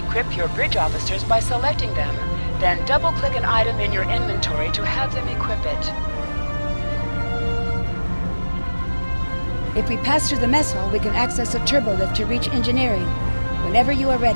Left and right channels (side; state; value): both; inverted; correlation -1.00